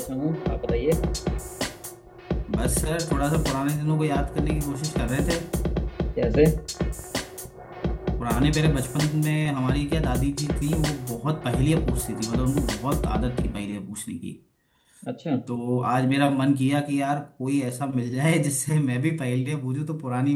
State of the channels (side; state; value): both; identical; correlation 1.00